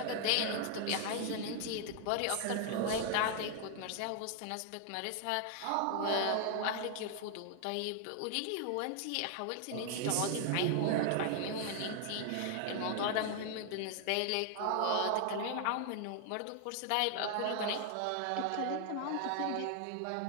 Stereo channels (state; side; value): different; both; correlation 0.00